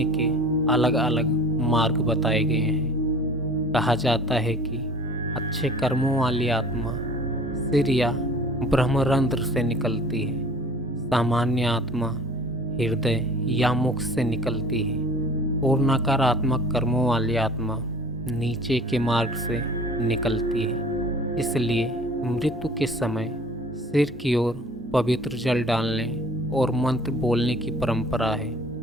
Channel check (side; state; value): both; normal; correlation 0.46